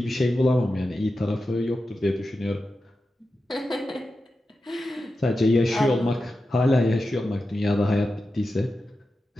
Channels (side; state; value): both; normal; correlation 0.91